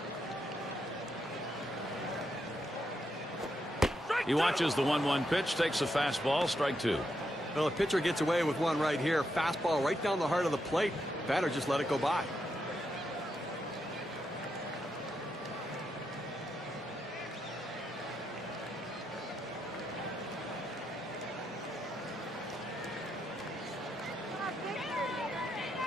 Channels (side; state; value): both; normal; correlation 0.82